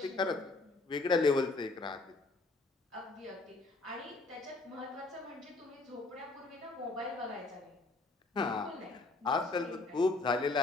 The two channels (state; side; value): quieter; right; 3.3 dB